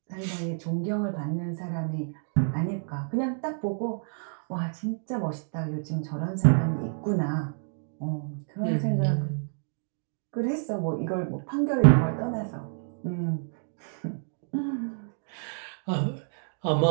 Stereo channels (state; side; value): silent; left; 59 dB below the other